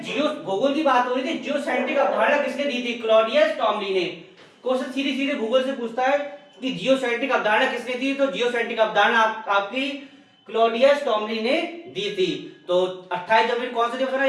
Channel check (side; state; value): both; identical; correlation 1.00